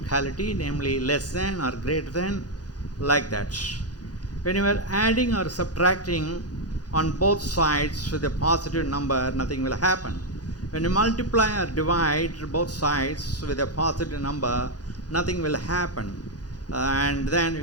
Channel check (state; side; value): late; right; 0.69 ms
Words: namely less than or greater than, like that. When you are adding or subtracting on both sides with a positive number, nothing will happen. When you multiply or divide both sides with a positive number, nothing will happen. And then